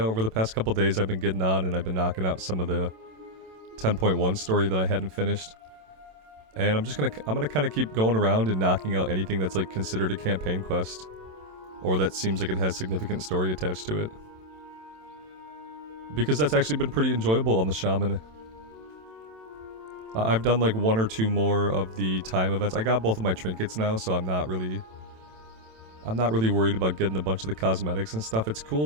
the past couple days I've been getting on and I've been knocking out some of the 10.1 story that I hadn't finished. And I'm gonna kind of keep going around and knocking out anything that's like considered a campaign quest or that seems like it has significant story attached to it. Because that's actually been pretty enjoyable on the Shaman. I've done like 1 or 2 more of the time events. I got both of my trinkets now, so I'm not really worried about getting a bunch of the cosmetics and stuff. It's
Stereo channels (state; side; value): late; left; 27 ms